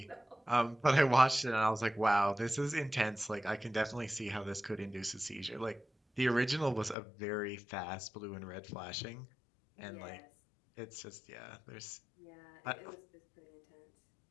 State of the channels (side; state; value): right; drops out; at 7.0 s